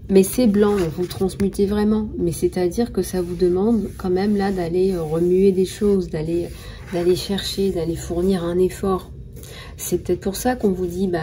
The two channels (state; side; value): identical; both; correlation 1.00